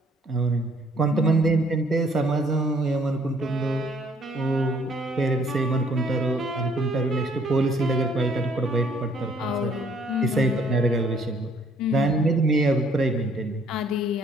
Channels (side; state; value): both; normal; correlation 0.63